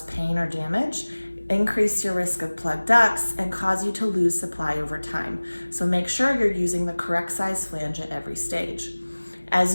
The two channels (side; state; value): both; inverted; correlation -1.00